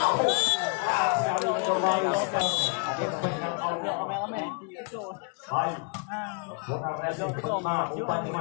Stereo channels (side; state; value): right; quieter; 35.5 dB